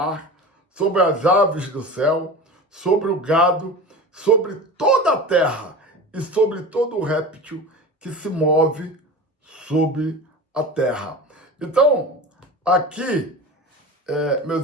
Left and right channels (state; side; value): normal; both; correlation 0.32